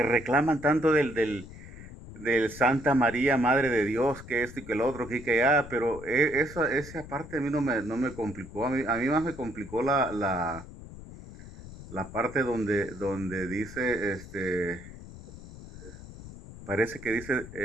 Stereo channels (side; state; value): left; noise; rumble, 15 dB below the sound